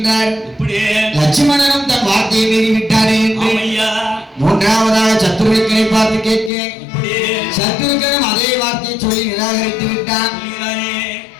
லட்சுமணனும் தன் வார்த்தையை மீறிவிட்டாரே என்று மூன்றாவதாக சத்ருக்கனை பார்த்து கேட்கிறேன். சத்ருக்கனும் அதே வார்த்தையை சொல்லி நிராகரித்து விட்டான்.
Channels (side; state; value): right; drops out; at 6.5 s